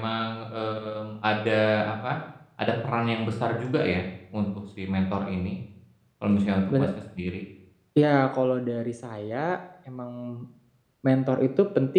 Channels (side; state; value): both; identical; correlation 1.00